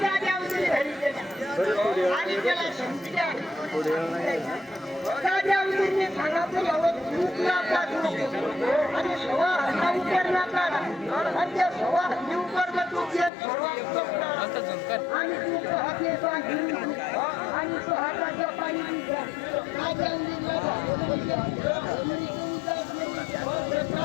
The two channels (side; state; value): right; drops out; at 13.3 s